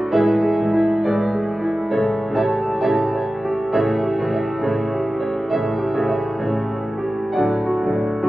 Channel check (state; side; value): normal; both; correlation 0.95